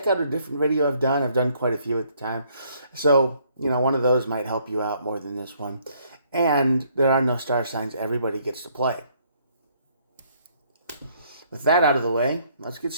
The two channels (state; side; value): inverted; both; correlation -0.66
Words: out a different video I've done. I've done quite a few at the time. So, one of those might help you out more than this one. And there are no star signs. Everybody gets to play. With that out of the way, let's get